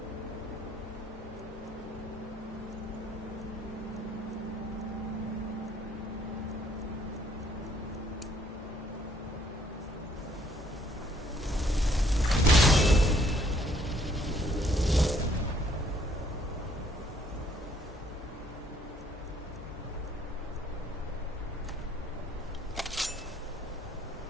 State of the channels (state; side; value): normal; both; correlation 0.63